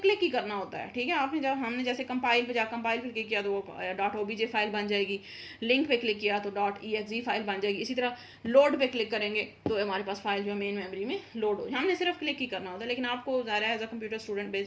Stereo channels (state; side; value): identical; both; correlation 1.00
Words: ही करना होता है, ठीक है। आपने जब हमने जैसे कंपाइल पे क्लिक किया तो वो .obj फाइल बन जाएगी, लिंक पे क्लिक किया तो .exe फाइल बन जाएगी, इसी तरह लोड पे क्लिक करेंगे तो हमारे पास फाइल जो मेन मेमोरी में लोड हो। हमने सिर्फ क्लिक ही करना होता है, लेकिन आपको ज़ाहिर है एज अ कंप्यूटर